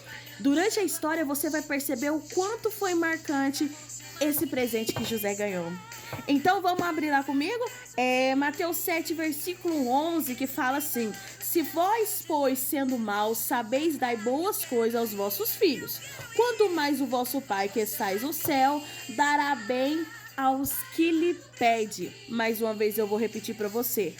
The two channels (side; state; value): both; identical; correlation 1.00